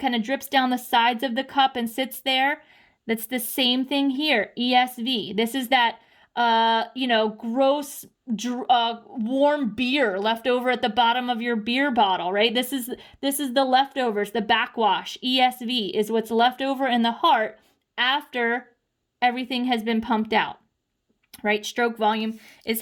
kind of drips down the sides of the cup and sits there. That's the same thing here, ESV. This is that, gross, warm beer left over at the bottom of your beer bottle, right? This is the leftovers, the backwash. ESV is what's left over in the heart after everything has been pumped out, right? Stroke volume is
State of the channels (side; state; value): both; identical; correlation 1.00